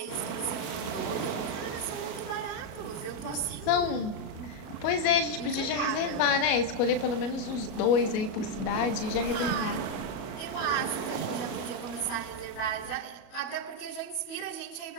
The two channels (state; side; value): late; right; 37 ms